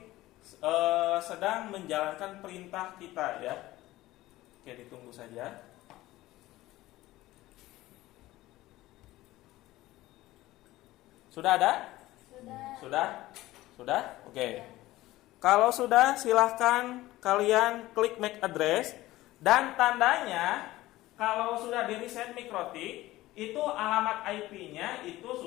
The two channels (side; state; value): right; quieter; 17.0 dB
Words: sedang menjalankan perintah kita ya. Oke, ditunggu saja. Sudah ada? Sudah? Oke. Kalau sudah, silahkan kalian klik MAC address. Dan tandanya kalau sudah di reset mikrotik, itu alamat IP-nya itu